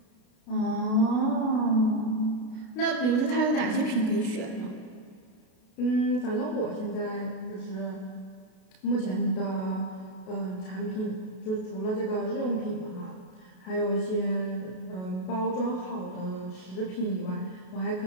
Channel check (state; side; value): late; right; 32 ms